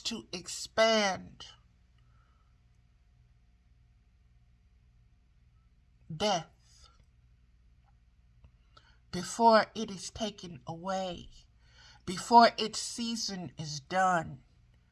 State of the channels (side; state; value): both; identical; correlation 1.00